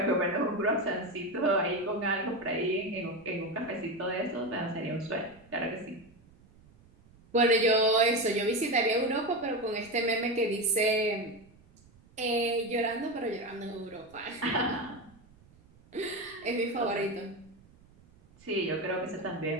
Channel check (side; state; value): right; noise; rumble, 27 dB below the sound